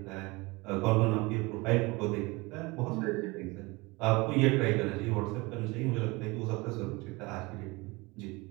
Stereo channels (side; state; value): left; quieter; 24.2 dB